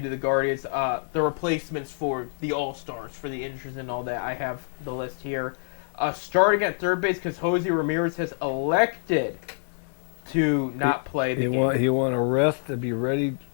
the Guardians, the replacements for the All-Stars, for the injuries and all that. I have the list here. Starting at third base because Jose Ramirez has elected to not play the game. He want to rest to be ready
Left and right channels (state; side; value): silent; right; digital silence